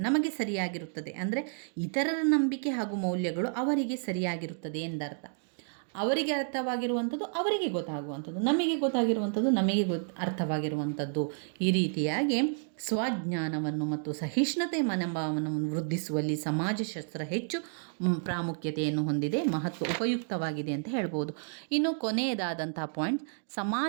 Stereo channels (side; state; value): left; silent; 57 dB below the other